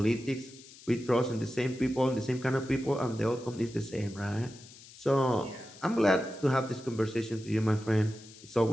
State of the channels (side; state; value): left; noise; hiss, 20 dB below the sound